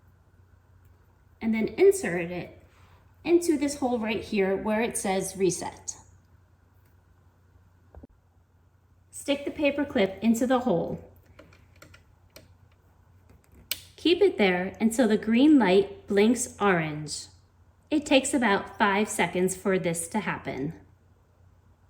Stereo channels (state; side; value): identical; both; correlation 1.00